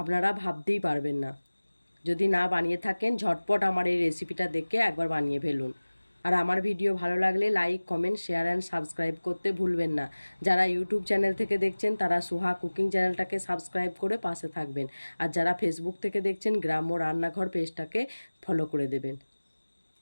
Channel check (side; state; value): both; inverted; correlation -1.00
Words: আপনারা ভাবতেই পারবেন না। যদি না বানিয়ে থাকেন ঝটপট আমার এই রেসিপিটা দেখে একবার বানিয়ে ফেলুন। আর আমার ভিডিও ভালো লাগলে like, comment, share and subscribe করতে ভুলবেন না। যারা ইউটিউব চ্যানেল থেকে দেখছেন তারা সুহা কুকিং চ্যানেলটাকে সাবস্ক্রাইব করে পাশে থাকবেন। আর যারা ফেসবুক থেকে দেখছেন গ্রাম্য রান্নাঘর পেজটাকে ফলো করে দেবেন।